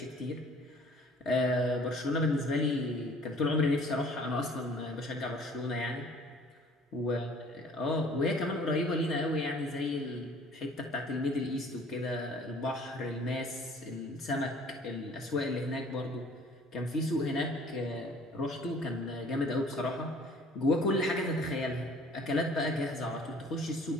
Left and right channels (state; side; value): normal; both; correlation 0.53